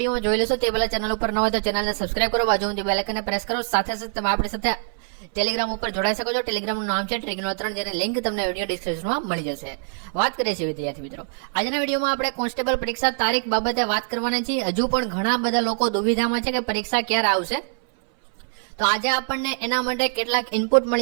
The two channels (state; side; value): silent; left; 62 dB below the other